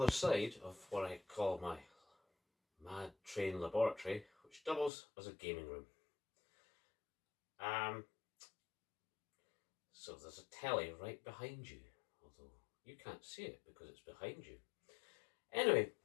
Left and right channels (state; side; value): drops out; right; at 4.9 s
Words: side of what I call my mad train laboratory, which doubles as a gaming room. So there's a telly right behind you, although you can't see it because it's behind you. Anyway,